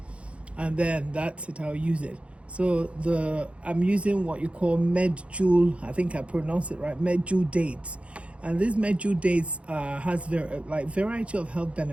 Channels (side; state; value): left; late; 0.061 ms